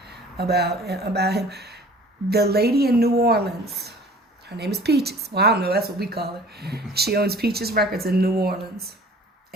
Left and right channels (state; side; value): normal; both; correlation 0.48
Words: About him. The lady in New Orleans. Her name is Peaches. Well, I don't know. That's what we call her. She owns Peaches Records in New Orleans.